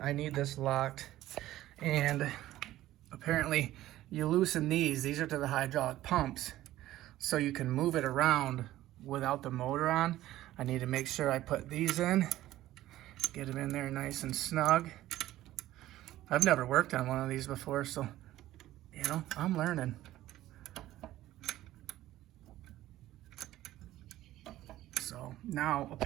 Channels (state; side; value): quieter; left; 14.8 dB